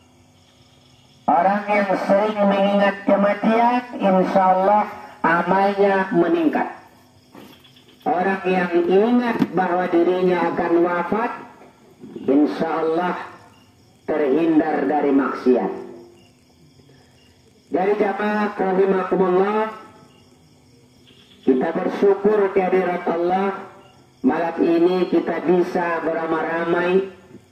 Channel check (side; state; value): both; identical; correlation 1.00